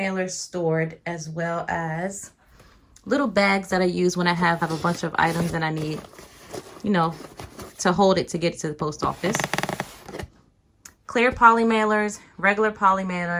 stored, as well as little bags that I use when I have a bunch of items and I need, you know, to hold it to get to the post office. Clear poly mailers, regular poly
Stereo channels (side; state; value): both; identical; correlation 1.00